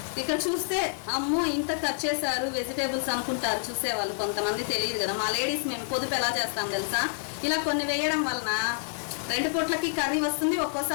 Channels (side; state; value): right; silent; 59 dB below the other